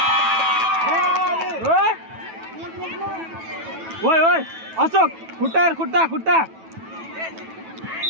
ओइ अशोक खुट्टा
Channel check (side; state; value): left; late; 9.2 ms